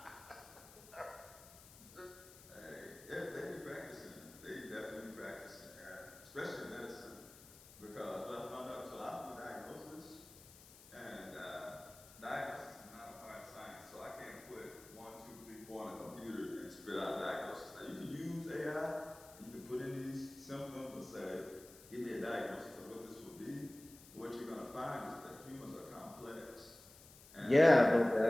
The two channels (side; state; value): left; noise; hiss, 20 dB below the sound